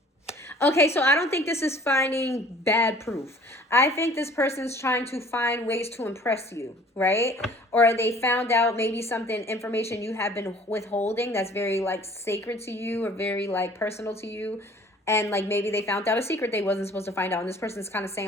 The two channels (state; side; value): normal; both; correlation 0.51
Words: Okay, so I don't think this is finding bad proof. I think this person's trying to find ways to impress you, right? Or they found out maybe something, information you have been withholding that's very like sacred to you or very like personal to you. And like maybe they found out a secret they wasn't supposed to find out. And this person's kind of